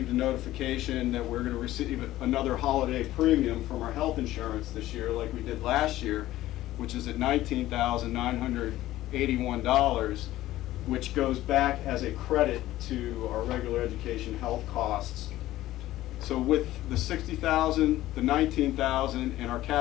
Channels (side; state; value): right; quieter; 15.3 dB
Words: a notification that we're going to receive another holiday premium from our health insurance this year, like we did last year, which is at $19,981, which goes back as a credit to our regular education health costs. So with the $60,000, the $19,000, and our